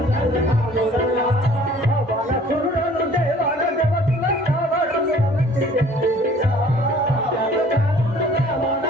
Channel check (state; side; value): normal; both; correlation 0.53